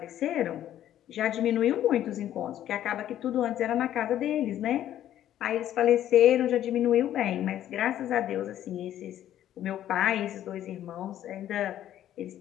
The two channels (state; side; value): quieter; right; 11.8 dB